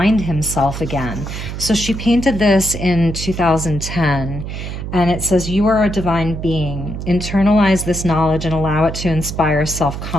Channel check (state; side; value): noise; right; hum, 7 dB below the sound